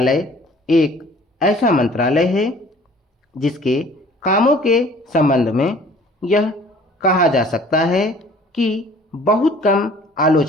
एक ऐसा मंत्रालय है जिसके कामों के संबंध में यह कहा जा सकता है कि बहुत कम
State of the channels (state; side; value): normal; both; correlation 0.52